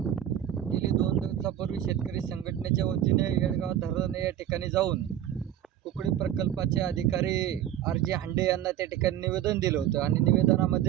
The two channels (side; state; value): left; quieter; 11.3 dB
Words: गेली 2 दिवसापूर्वी शेतकरी संघटनेच्या वतीने येळगाव धरण या ठिकाणी जाऊन कुकडी प्रकल्पाचे अधिकारी RJ हांडे यांना त्या ठिकाणी निवेदन दिलं होतं आणि